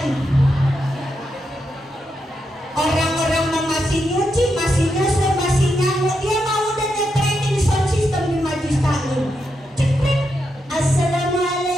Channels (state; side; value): normal; both; correlation 0.84